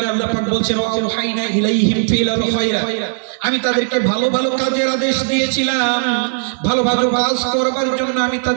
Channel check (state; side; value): silent; left; digital silence